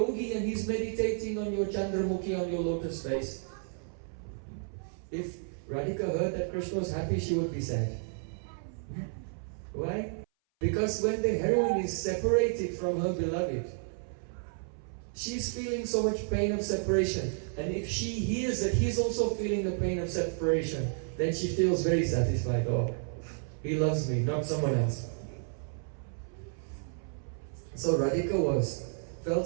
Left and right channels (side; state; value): left; silent; 57 dB below the other